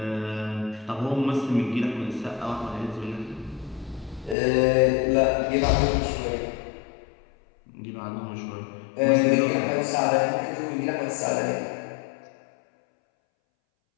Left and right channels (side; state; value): right; drops out; at 4.4 s